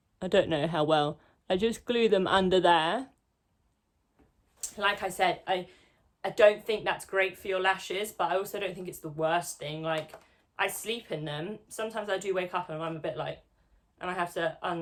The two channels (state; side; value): identical; both; correlation 1.00